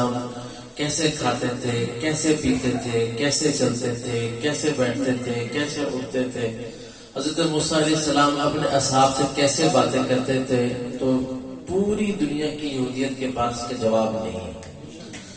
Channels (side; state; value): both; identical; correlation 1.00